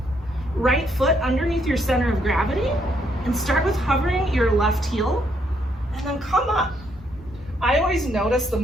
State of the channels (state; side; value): normal; both; correlation 0.73